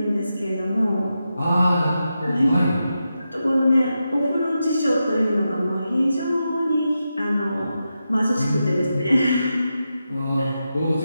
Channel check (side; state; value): both; inverted; correlation -0.89